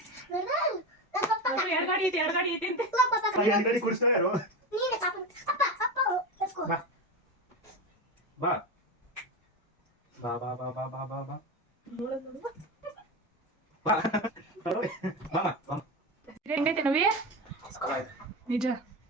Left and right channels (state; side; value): normal; both; correlation 0.20